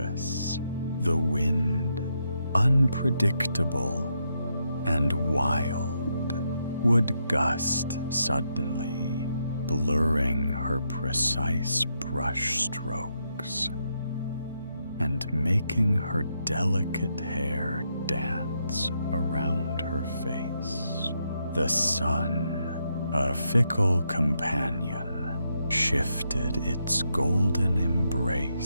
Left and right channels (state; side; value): inverted; both; correlation -0.80